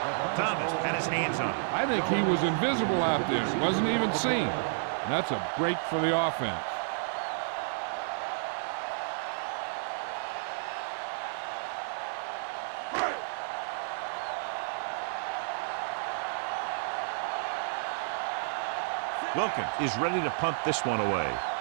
Thomas had his hands on it. I think he was invisible out there. Wasn't even seen. And that's a break for the offense. Wilkins is ready to punt this one away.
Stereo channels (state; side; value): silent; left; digital silence